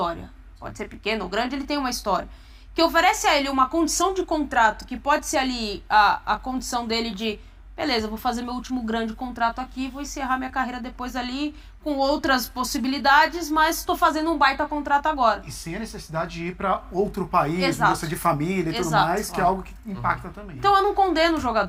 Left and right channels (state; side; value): identical; both; correlation 1.00